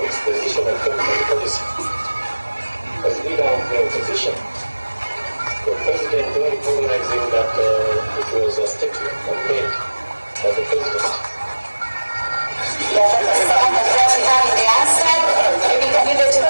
exposition of government policy, as leader of the opposition, the President, though recognizing that it was a statement made by the President.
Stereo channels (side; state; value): both; inverted; correlation -1.00